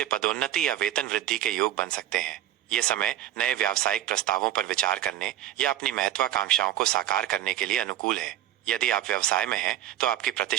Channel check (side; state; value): left; quieter; 12.5 dB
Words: पदोन्नति या वेतन वृद्धि के योग बन सकते हैं। यह समय नए व्यावसायिक प्रस्तावों पर विचार करने या अपनी महत्वाकांक्षाओं को साकार करने के लिए अनुकूल है। यदि आप व्यवसाय में हैं तो आपकी